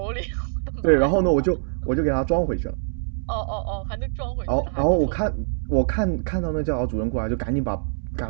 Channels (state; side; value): silent; left; digital silence